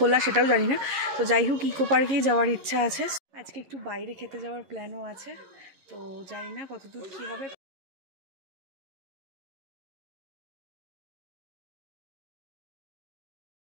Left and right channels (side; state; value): left; late; 11 ms